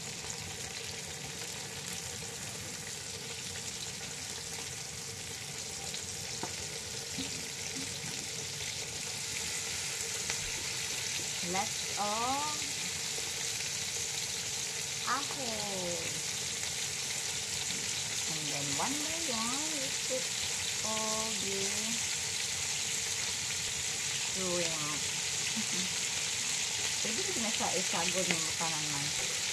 Let's apple. And then one by one, we put all the shrimp. Pwede ko na siya isagod ng makanan man.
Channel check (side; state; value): both; identical; correlation 1.00